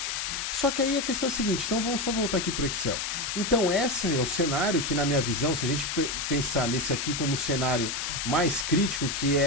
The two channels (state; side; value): noise; left; hiss, 2 dB below the sound